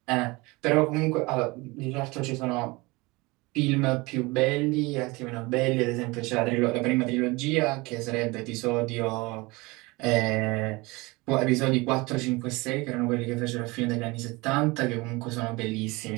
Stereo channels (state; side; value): quieter; left; 23.9 dB